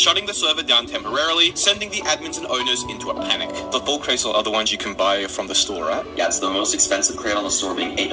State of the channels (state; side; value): identical; both; correlation 1.00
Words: the server down temporarily, sending the admins and owners into a panic. The full crates are the ones you can buy from the store, right? Yeah, it's the most expensive crate on the store, being